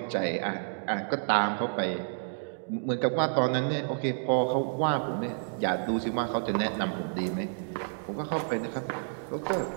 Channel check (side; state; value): left; silent; digital silence